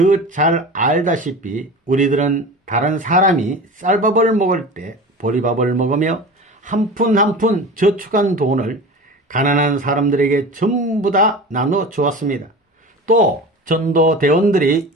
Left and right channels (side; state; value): both; normal; correlation 0.33